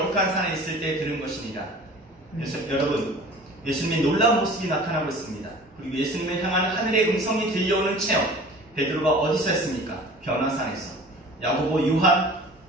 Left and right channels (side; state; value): both; normal; correlation 0.43